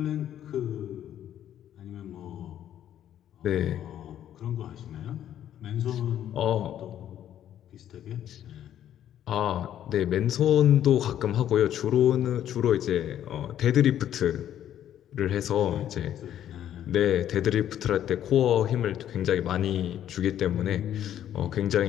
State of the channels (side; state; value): right; quieter; 10.9 dB